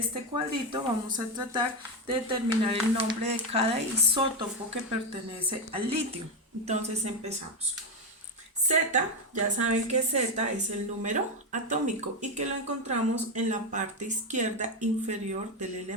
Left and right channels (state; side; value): normal; both; correlation 0.10